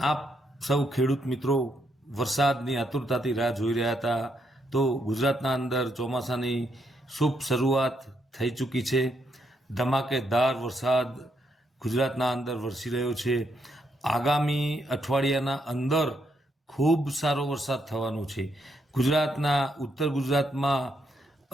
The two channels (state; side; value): normal; both; correlation 0.77